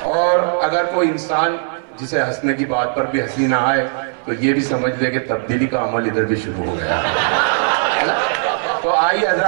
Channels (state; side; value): silent; left; 62 dB below the other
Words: اور اگر کوئی انسان جسے ہنسنے کی بات پر بھی ہنسی نہ آئے تو یہ بھی سمجھ لے کہ تبدیلی کا عمل ادھر بھی شروع ہو گیا ہے نا؟ تو آئیے